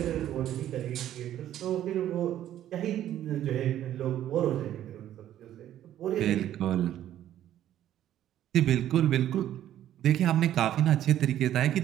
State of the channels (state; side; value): quieter; left; 11.9 dB